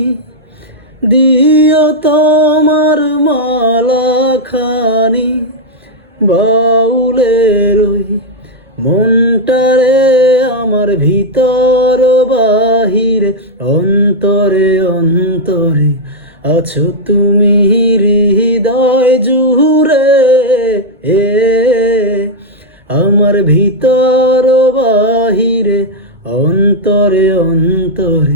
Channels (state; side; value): normal; both; correlation -0.02